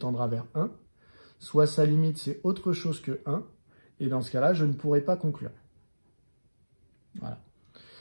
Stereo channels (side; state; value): both; inverted; correlation -1.00